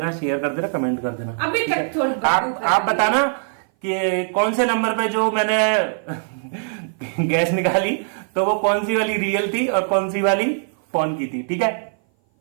शेयर कर देना, कमेंट कर देना। अभी तक थोड़ी आप बताना कि कौन से नंबर पे जो मैंने गैस निकाली तो वो कौन सी वाली रियल थी और कौन सी वाली फोन की थी। ठीक है,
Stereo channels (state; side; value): silent; left; 58 dB below the other